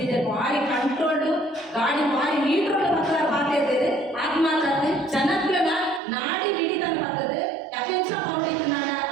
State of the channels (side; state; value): left; drops out; at 6.0 s